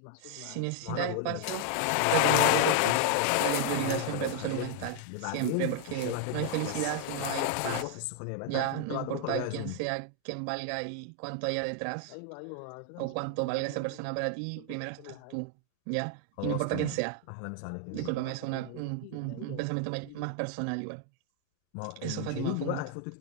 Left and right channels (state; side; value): different; both; correlation 0.00